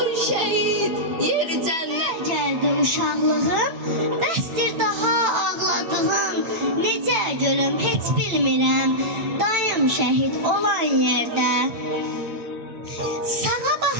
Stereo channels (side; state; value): left; late; 9.0 ms